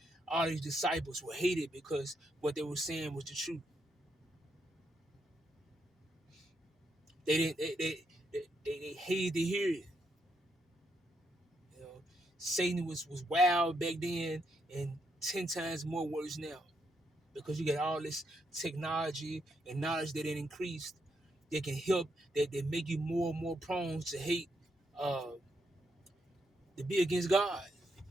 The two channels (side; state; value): both; normal; correlation 0.79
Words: all these disciples were hated because what they were saying was the truth. They didn't. They hated to hear it. You know, Satan was wild back then, and 10 times more worse now because you got all this technology and knowledge that it increased. That can help. That make you more and more prone to hate, uh, to be against God.